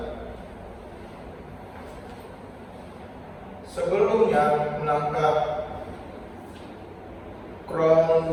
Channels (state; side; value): identical; both; correlation 1.00